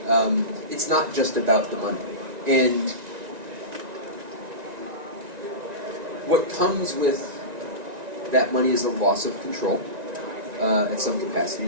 It's not just about the money. And what comes with that money is a loss of control at some capacity.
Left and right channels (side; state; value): left; late; 1.9 ms